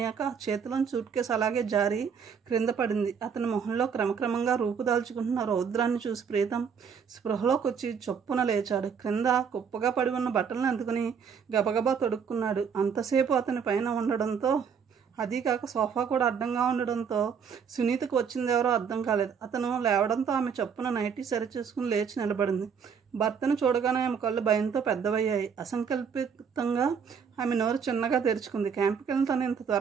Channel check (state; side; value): quieter; left; 6.7 dB